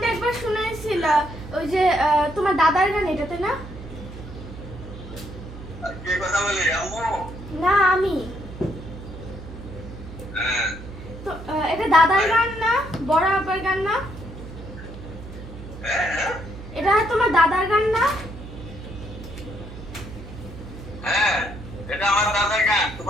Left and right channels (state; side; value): noise; right; hum, 13 dB below the sound